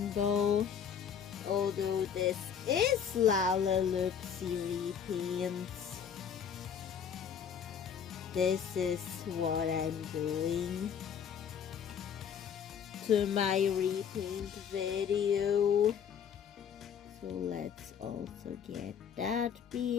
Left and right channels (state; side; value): quieter; right; 7.7 dB